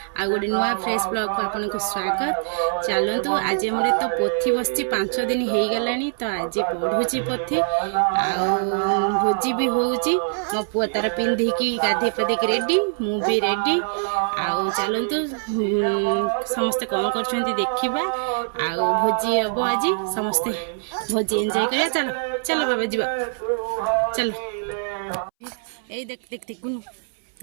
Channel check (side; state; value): left; silent; 63 dB below the other